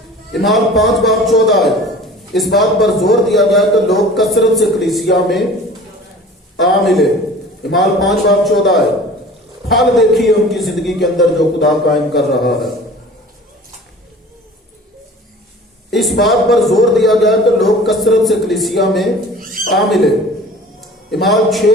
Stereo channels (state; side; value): normal; both; correlation 0.43